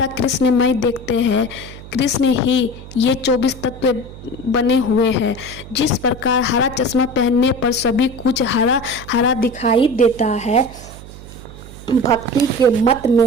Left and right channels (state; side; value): noise; right; hum, 16 dB below the sound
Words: कृष्णमय देखते हैं, कृष्ण ही ये 24 तत्व बने हुए हैं। जिस प्रकार हरा चश्मा पहनने पर सभी कुछ हरा हरा दिखाई देता है, भक्ति के मत में